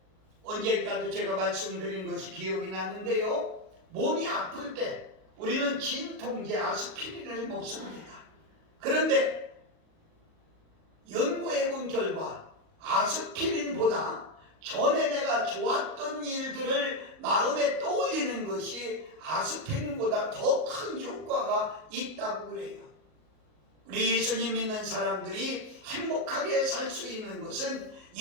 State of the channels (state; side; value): late; left; 38 ms